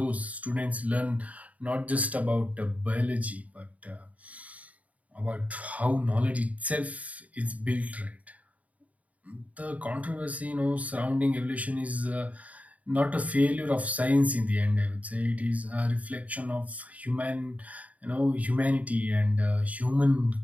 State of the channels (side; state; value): left; late; 0.069 ms